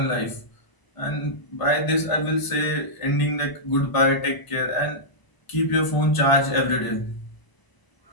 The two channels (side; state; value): right; late; 1.0 ms